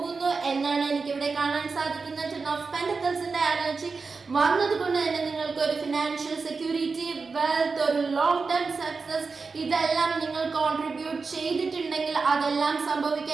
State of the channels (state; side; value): quieter; left; 4.5 dB